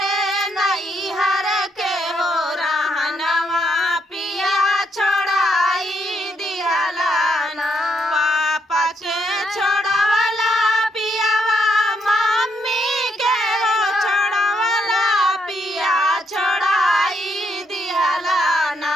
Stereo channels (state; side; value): normal; both; correlation 0.75